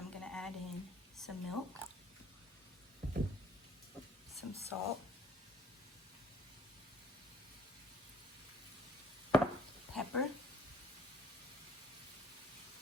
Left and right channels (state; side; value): normal; both; correlation 0.59